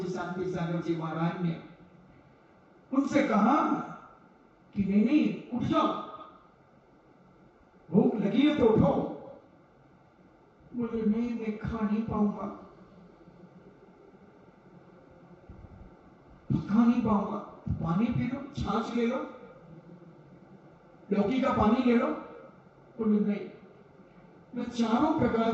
शांति सागर जी महाराज ने उनसे कहा कि नहीं नहीं, उठ जाओ, भूख लगी है तो उठो। बोले नहीं, मैं खा नहीं पाऊंगा, खा नहीं पाऊंगा। पानी पी लो, छाछ ले लो, लौकी का पानी ले लो। बोले नहीं, मैं चारों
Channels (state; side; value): identical; both; correlation 1.00